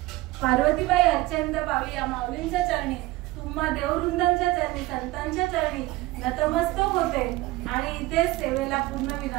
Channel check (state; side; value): quieter; left; 18.9 dB